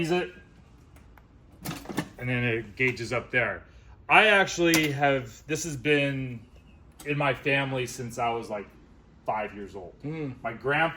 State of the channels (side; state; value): both; identical; correlation 1.00